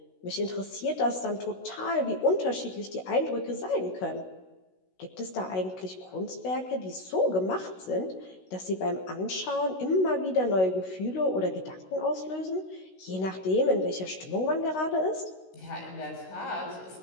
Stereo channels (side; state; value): right; late; 16 ms